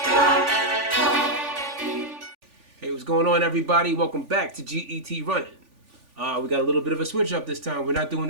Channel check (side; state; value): left; late; 3.5 ms